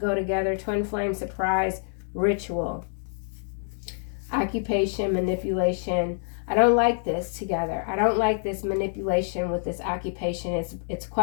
together. Twin flame, surprise, ritual. Occupation, manipulation. I don't like this together. I don't like this manipulation with this occupation. It's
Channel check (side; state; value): right; silent; digital silence